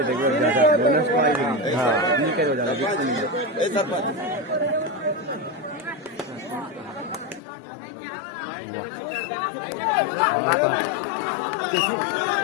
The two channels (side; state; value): right; drops out; at 7.4 s